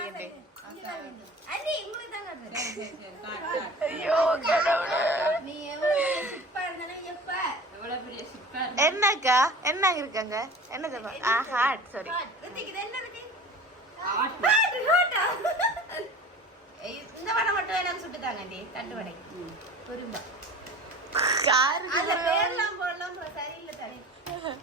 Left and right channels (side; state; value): both; normal; correlation 0.39